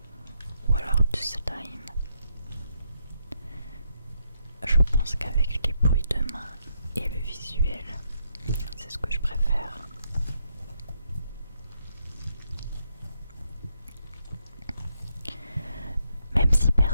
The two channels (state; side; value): inverted; both; correlation -0.78